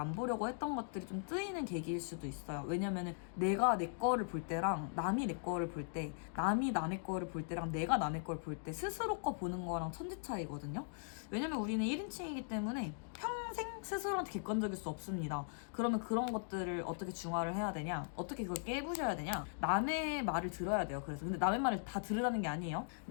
보려고 했던 것들이 좀 뜨이는 계기일 수도 있어요. 왜냐면은 내가 내 거를 볼 때랑 남이 내 거를 볼 때, 남이 남의 거를 볼 때랑 내가 남의 걸 볼 때 스스로 거 보는 거랑 천지 차이거든요. 왜냐면 우리는 1인칭이기 때문에 평생 스스로한테 객관적일 수 없습니다. 그러면 그런 것들을 어떻게 중화를 해야 되냐? 어떻게 그걸 깨부셔야 되냐? 남의 말을 들어야 돼요. 그래서 근데 남의 말을 다 들으라는 게 아니에요.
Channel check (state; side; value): silent; right; digital silence